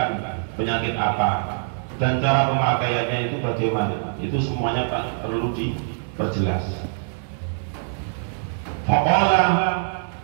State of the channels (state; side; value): silent; left; digital silence